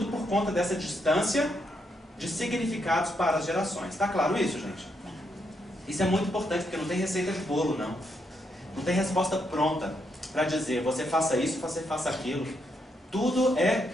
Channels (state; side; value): normal; both; correlation 0.78